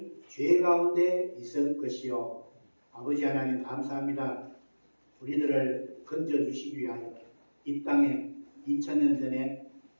죄 가운데 있을 것이요. 아버지 하나님 감사합니다. 우리들을 건져주시기 위하여 이 땅에 2000년 전에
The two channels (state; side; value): inverted; both; correlation -1.00